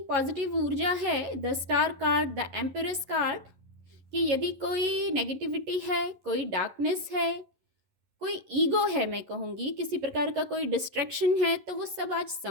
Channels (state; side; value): late; left; 11 ms